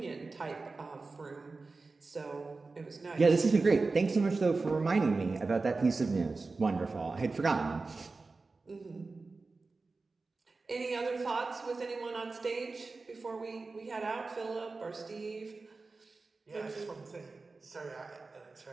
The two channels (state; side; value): quieter; left; 3.8 dB